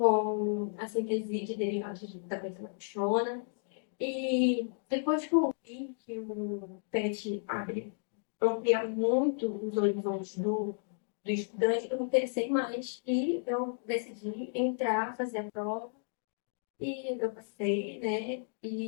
a síntese de derivados da beta-lactona. E depois que eu vi que o PET amplia muito os horizontes do estudante, eu me interessei mais e eu decidi entrar, fazer a prova. E eu passei, né?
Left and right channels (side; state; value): right; silent; digital silence